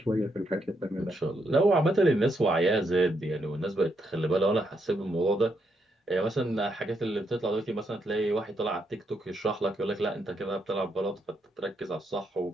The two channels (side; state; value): both; normal; correlation 0.78